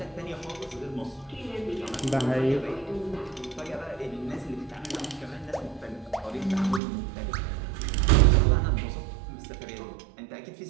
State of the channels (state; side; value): drops out; left; at 6.8 s